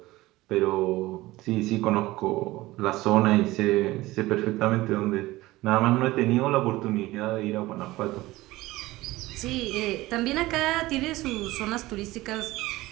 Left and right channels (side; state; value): left; quieter; 18.5 dB